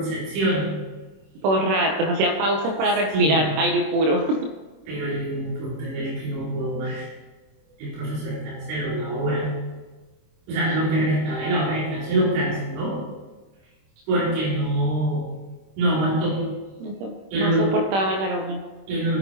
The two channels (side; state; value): left; late; 26 ms